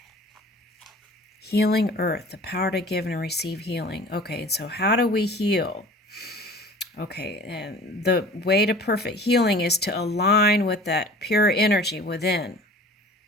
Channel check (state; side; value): normal; both; correlation 0.44